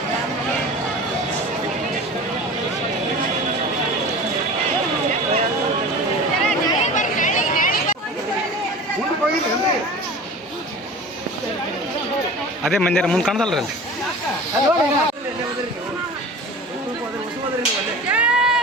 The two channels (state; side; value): normal; both; correlation 0.37